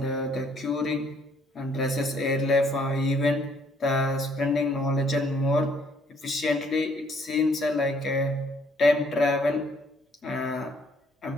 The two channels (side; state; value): both; normal; correlation 0.64